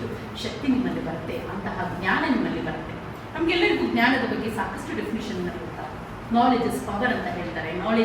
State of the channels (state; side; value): identical; both; correlation 1.00